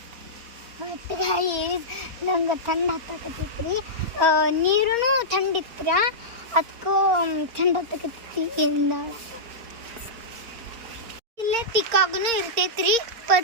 ನಂಗೆ ಥಂಡ್ ಹತ್ತಕತ್ತೈತ್ರಿ, ನೀರೂ ಥಂಡಿತ್ರ, ಅದಕ್ಕೂ ಥಂಡ್ ಹತ್ತಕತ್ತೈತಿ. ಇಲ್ಲೇ ಪಿಕ್ಕಾಗೂ ಇರ್ತೈತ್ರಿ,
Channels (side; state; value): left; late; 4.3 ms